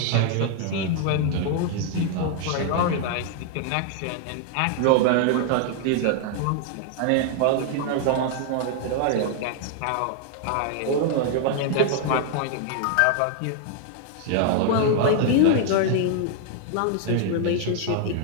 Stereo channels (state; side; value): different; both; correlation 0.00